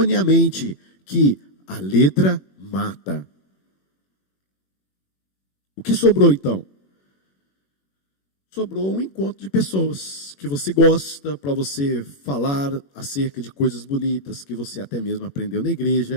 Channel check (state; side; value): late; right; 21 ms